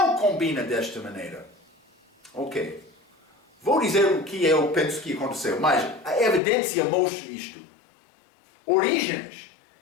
combina desta maneira. Ok. Vou dizer o que eu penso que aconteceu, mas a evidência mostra isto. Orígenes,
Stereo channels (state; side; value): drops out; right; at 6.4 s